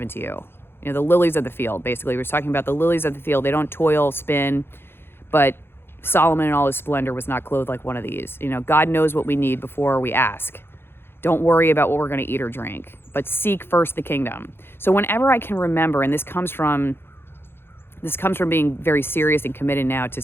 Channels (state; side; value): late; right; 0.11 ms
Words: to you. You know, the lilies of the field, basically. We're talking about the lilies of the field. They don't toil, spin, but Solomon in all his splendor was not clothed like one of these. You know, God knows what we need before we ask. Don't worry about what we're going to eat or drink, but seek first the kingdom. So whenever I can remember, and this comes from being very serious and committed now to